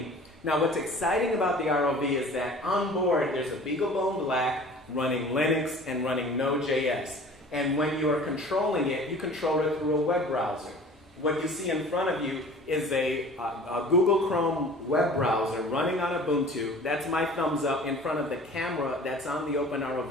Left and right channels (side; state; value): both; normal; correlation 0.45